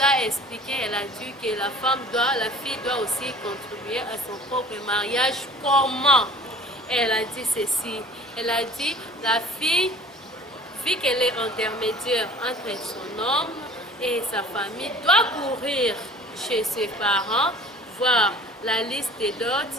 expliqué, elle a dit que la fille doit aussi contribuer à son propre mariage. Comment? Elle a dit ceci, elle a dit la fille, vu qu'elle est intermédiaire entre son homme et sa famille, doit courir chez ses parents, voir la liste des dots.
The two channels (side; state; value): both; normal; correlation 0.47